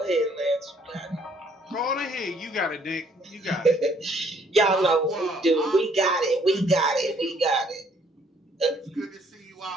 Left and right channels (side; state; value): both; normal; correlation 0.64